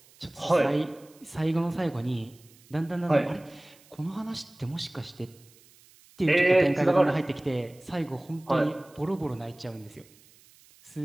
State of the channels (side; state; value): right; noise; hiss, 27 dB below the sound